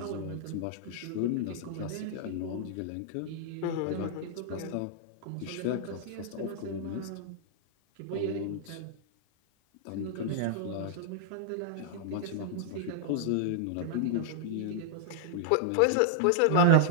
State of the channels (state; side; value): different; both; correlation -0.01